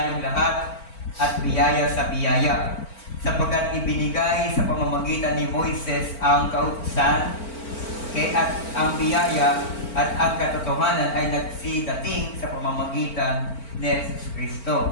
lahat at biyaya sa biyaya. Sapagkat ibinigay sa pamamagitan ni Moises ang kautusan, at ang biyaya at ang katotohanan ay nagsidating sa pamamagitan ni Jesus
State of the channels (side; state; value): right; late; 4.4 ms